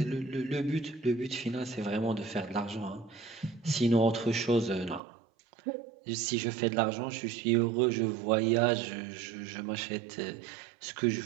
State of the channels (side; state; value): left; drops out; at 5.0 s